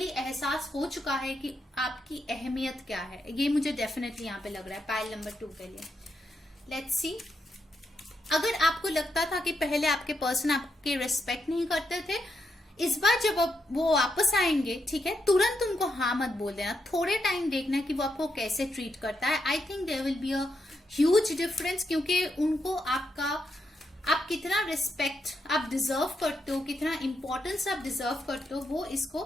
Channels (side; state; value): both; normal; correlation 0.82